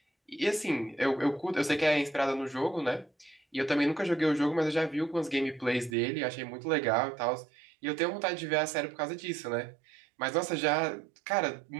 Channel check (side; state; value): left; drops out; at 6.0 s